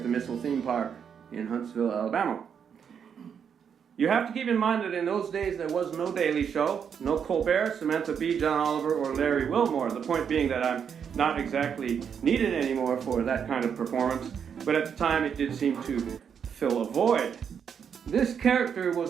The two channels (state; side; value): quieter; left; 7.4 dB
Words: the Missile Theme Park in Huntsville, Alabama. You have to keep in mind that in those days there was no Daily Show, no Colbert, Samantha Bee, John Oliver, or Larry Wilmore. The point being that I'm not exactly needed anymore for that kind of performance, but at the time it did seem to fill a void. This character was